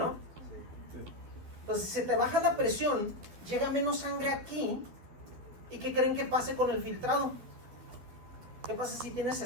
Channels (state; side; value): late; left; 12 ms